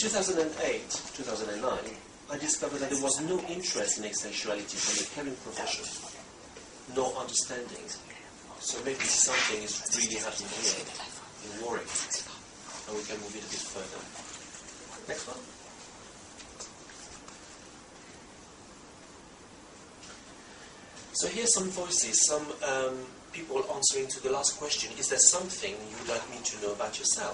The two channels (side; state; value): both; identical; correlation 1.00